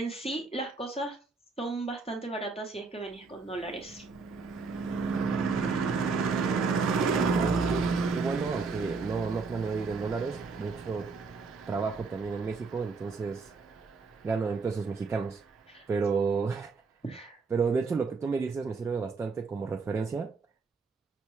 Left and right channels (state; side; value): quieter; left; 4.4 dB